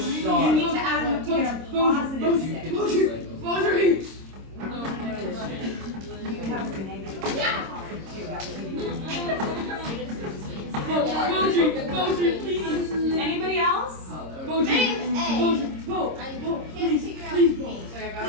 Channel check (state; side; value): late; left; 26 ms